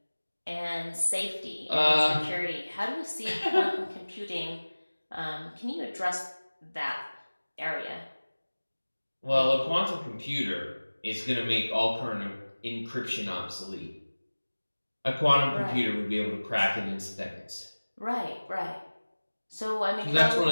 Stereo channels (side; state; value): both; inverted; correlation -1.00